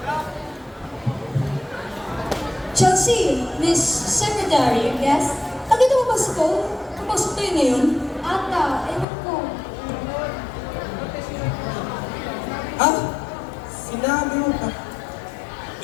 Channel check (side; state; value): right; drops out; at 9.1 s